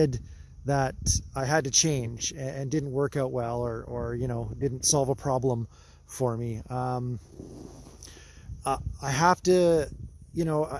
that I had to change and didn't work out well, or didn't solve a problem for me. I have to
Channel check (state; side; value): identical; both; correlation 1.00